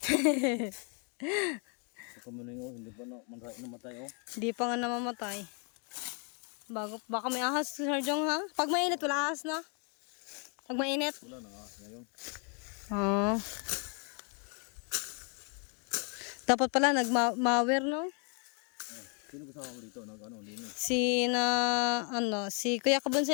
Sa kamuning oh, hindi pa namatay oh. di pa nga namamatay. Baka may ahas si Sir Jong, ha? Pag mainit, wala ahas na. Pag mainit. Wala na ngayon. Oo. Dapat pala nagmawer, no? Sino kasama mo dito? Ano, linis? Si Kuya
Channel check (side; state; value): right; quieter; 37.8 dB